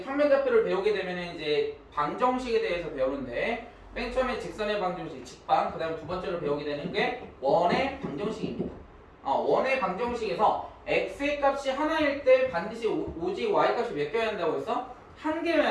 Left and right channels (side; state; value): both; identical; correlation 1.00